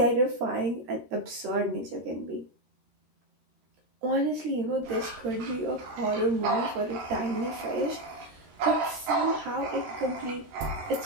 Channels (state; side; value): late; left; 13 ms